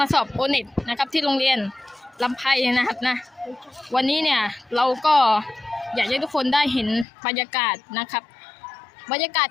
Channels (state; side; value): drops out; right; at 7.1 s